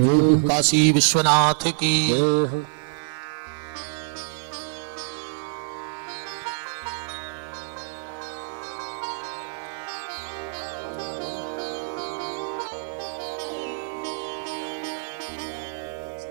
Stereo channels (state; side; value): silent; left; 61 dB below the other